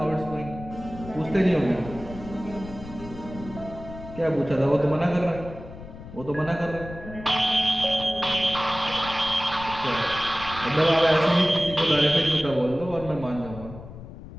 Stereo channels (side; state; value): left; noise; rumble, 14 dB below the sound